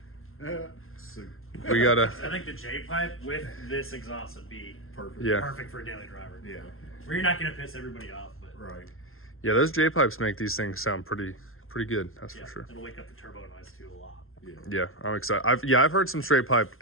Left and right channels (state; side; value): late; right; 0.61 ms